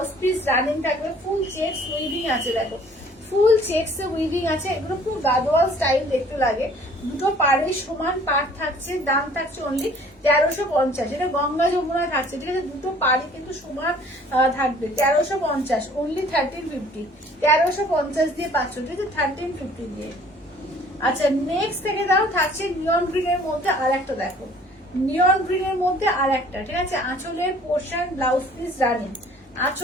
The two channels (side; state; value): both; normal; correlation 0.54